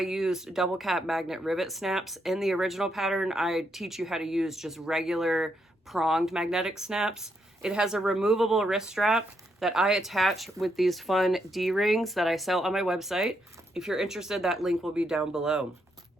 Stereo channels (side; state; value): both; normal; correlation 0.78